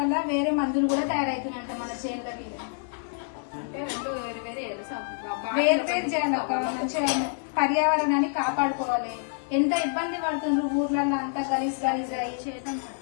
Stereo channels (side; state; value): right; silent; 60 dB below the other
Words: వేరే మందులు కూడా తయారవుతున్నాయంట మన చేనులకి. అంటే రెండు వేరు వేరు వేరు వేరు చేయాలి. మంచిగా పర్యావరణాన్ని కాపాడుకోవాలి. ఎంత ఇబ్బంది పడుతుండ్రు ఊర్లలో అంతా గలీజ్ గలీజ్ చేయటం.